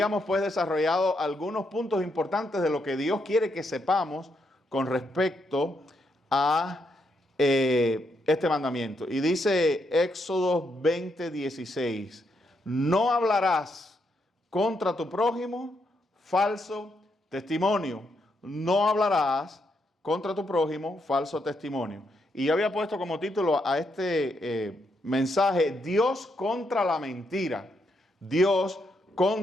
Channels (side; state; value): both; normal; correlation 0.79